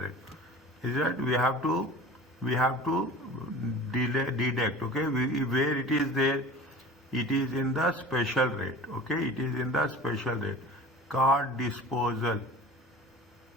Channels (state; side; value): normal; both; correlation 0.40